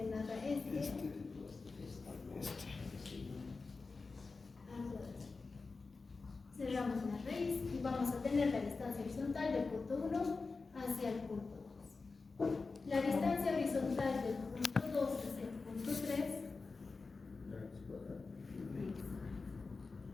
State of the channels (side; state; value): right; quieter; 4.1 dB